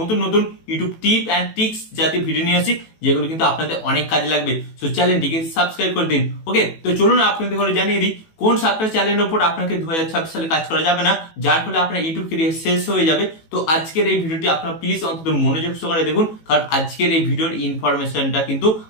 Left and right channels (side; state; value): right; late; 18 ms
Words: নতুন ইউটিউব টিপ অ্যান্ড ট্রিক্স জাতীয় ভিডিও নিয়ে আসি, যেগুলো কিন্তু আপনাদের অনেক কাজে লাগবে। সো চ্যানেলটিকে সাবস্ক্রাইব করে দিন। ওকে, তো চলুন আপনাদের ঘরে জানিয়ে দিই কোন 7টা চ্যানেলের উপর আপনাকে 2026 সালে কাজ করা যাবে না, যার ফলে আপনার ইউটিউব ক্যারিয়ার শেষ হয়ে যাবে। তো আজকের এই ভিডিওটি আপনারা প্লিজ অন্তত মনোযোগ সহকারে দেখুন, কারণ আজকের এই ভিডিওর ইনফরমেশনটা কিন্তু